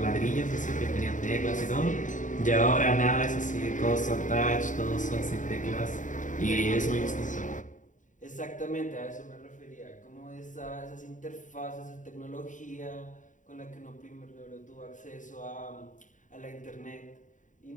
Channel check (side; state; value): right; late; 0.37 ms